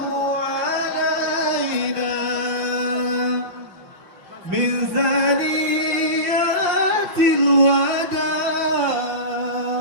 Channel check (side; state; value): left; late; 5.5 ms